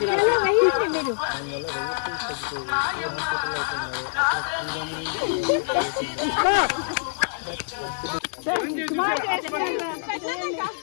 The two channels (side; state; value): right; silent; 57 dB below the other